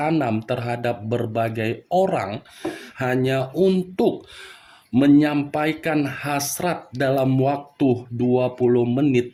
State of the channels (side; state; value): both; identical; correlation 1.00